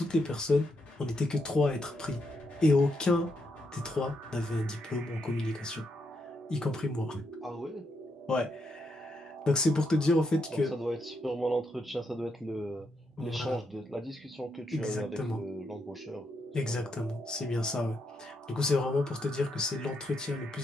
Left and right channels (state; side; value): normal; both; correlation 0.80